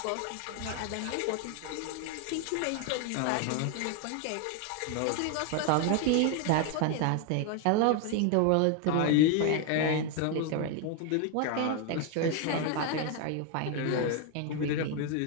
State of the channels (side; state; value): both; different; correlation 0.01